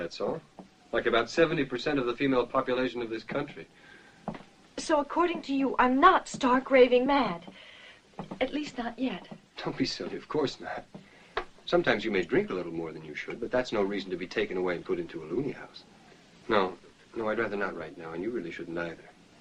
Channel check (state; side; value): identical; both; correlation 1.00